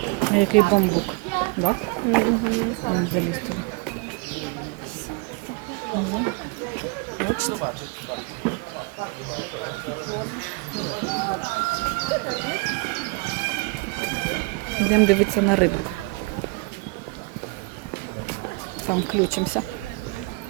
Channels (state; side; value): quieter; left; 27.0 dB